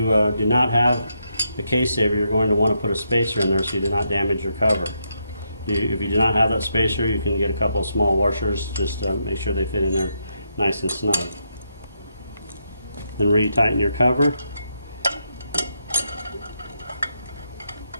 do not have a case saver, you're going to want to put a spacer in there so you do not damage your cover. If you do not have that spacer, you can get a couple of small washers. Just make sure they fit in there nice and snug. Then retighten your cover.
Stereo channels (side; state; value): both; inverted; correlation -0.80